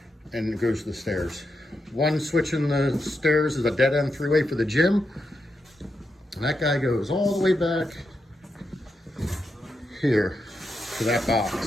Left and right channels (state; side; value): normal; both; correlation 0.85